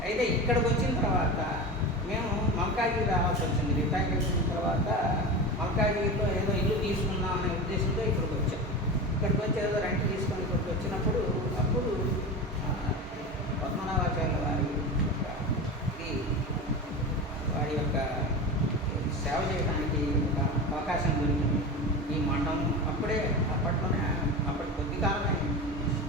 అయితే ఇక్కడికి వచ్చిన తర్వాత మేము మల్కాజ్గిరి రావాల్సి వచ్చింది. రిటైర్ అయిన తర్వాత మల్కాజ్గిరిలో ఏదో ఇల్లు తీసుకుందాం అనే ఉద్దేశంతో ఇక్కడికి వచ్చాం. ఇక్కడికి వచ్చి ఏదో రెంట్ తీసుకొని ఇక్కడికి వచ్చినప్పుడు అప్పుడు పద్మనాభాచార్య వారి యొక్క సేవ చేయడానికి ఒక అవకాశం దొరికింది. ఈ మఠం అప్పటి కొద్ది కాలమే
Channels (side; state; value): both; normal; correlation 0.26